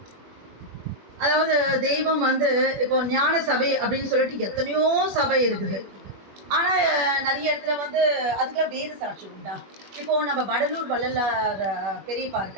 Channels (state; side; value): late; left; 21 ms